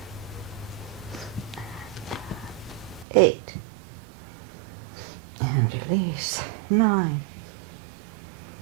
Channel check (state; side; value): drops out; left; at 3.1 s